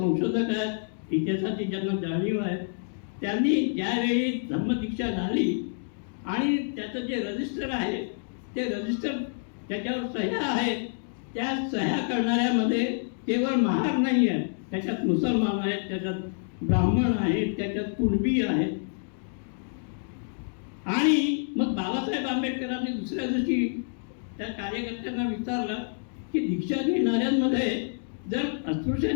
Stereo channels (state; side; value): silent; right; digital silence